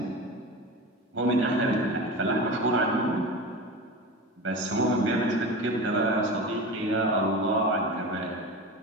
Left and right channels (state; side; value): normal; both; correlation 0.29